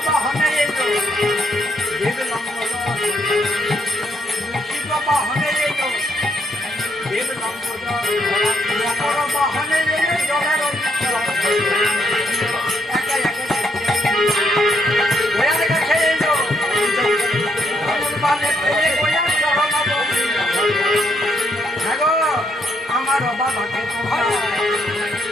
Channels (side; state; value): both; normal; correlation 0.73